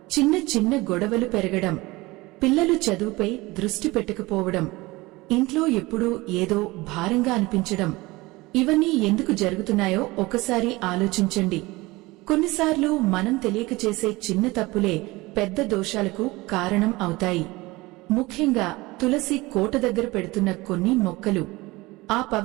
చిన్న చిన్న గొడవలు పెరగడం, పిల్లలు చదువుపై దృష్టి పెట్టకపోవడం, ఇంట్లో ఎప్పుడూ ఏదో భారంగా అనిపించడం, ఇవన్నీ ఎందుకు జరుగుతున్నాయో ఒకసారి ఆలోచించండి. కొన్నిసార్లు మనం తెలియక చేసే చిన్న తప్పులే పెద్ద దోషాలకు కారణం అవుతాయి. ముఖ్యంగా తులసి కోట దగ్గర పెడుతున్న కొన్ని మొక్కలు ఆ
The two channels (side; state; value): left; quieter; 21.4 dB